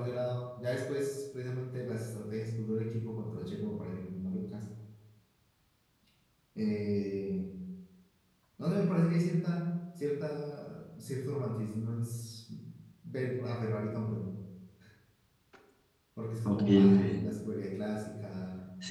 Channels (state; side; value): identical; both; correlation 1.00